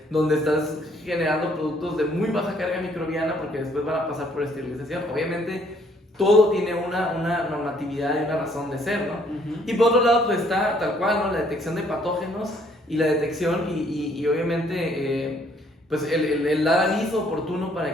donde estás generando productos de muy baja carga microbiana porque después van a pasar por esterilización. Obviamente, todo tiene una normatividad y una razón de ser, ¿no? Y por otro lado, pues está tal cual, ¿no? La detección de patógenos y la detección y obviamente pues el dar aviso oportuno para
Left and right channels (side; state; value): both; normal; correlation 0.64